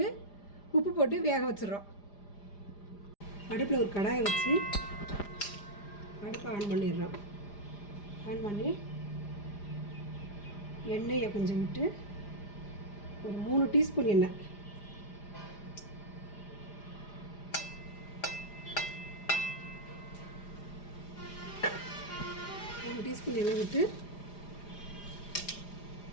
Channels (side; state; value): right; late; 4.9 ms